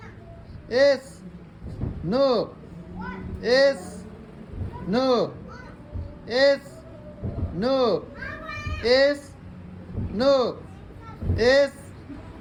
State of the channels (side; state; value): both; identical; correlation 1.00